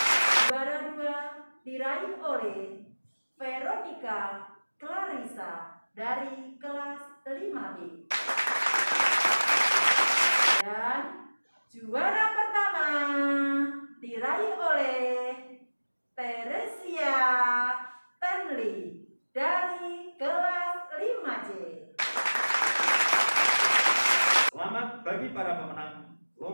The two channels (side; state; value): both; inverted; correlation -1.00